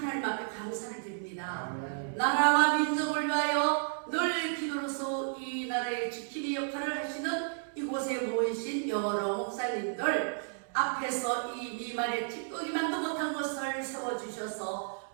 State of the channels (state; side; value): silent; left; digital silence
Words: 앞에 감사를 드립니다. 나라와 민족을 위하여 늘 기도로서 이 나라의 지킴이 역할을 하시는 이곳에 모이신 여러 목사님들 앞에서 이 미말에 찌꺼기만도 못한 것을 세워주셔서